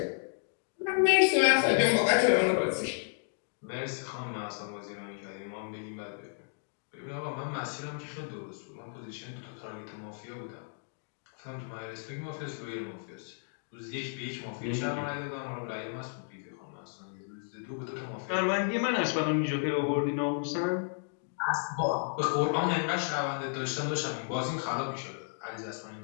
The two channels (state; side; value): silent; right; digital silence